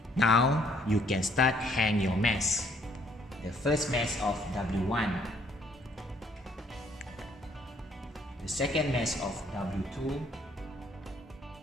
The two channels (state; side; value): normal; both; correlation 0.65